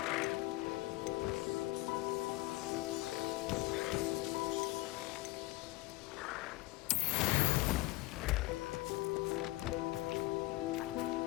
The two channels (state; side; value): quieter; right; 19.7 dB